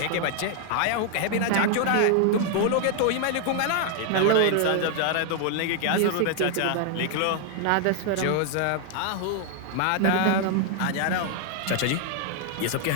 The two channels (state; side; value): different; both; correlation 0.00